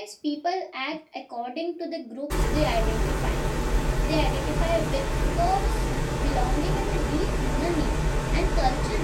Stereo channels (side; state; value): both; identical; correlation 1.00